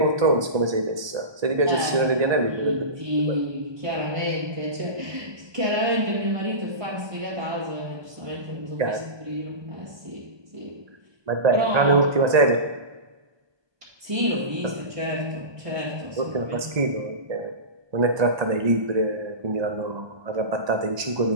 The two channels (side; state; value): left; late; 1.2 ms